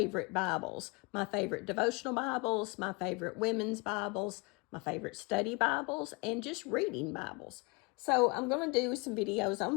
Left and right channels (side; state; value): right; quieter; 29.7 dB